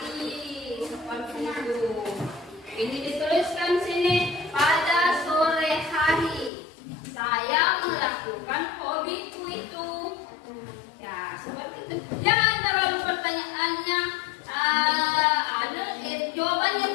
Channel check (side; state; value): right; drops out; at 6.5 s